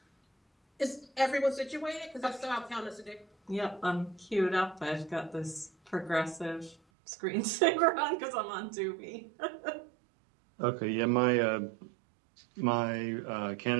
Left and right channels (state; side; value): drops out; left; at 6.8 s